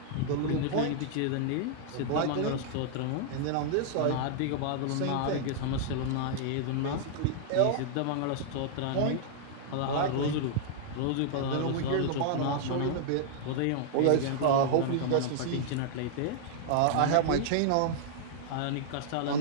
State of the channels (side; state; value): both; different; correlation -0.01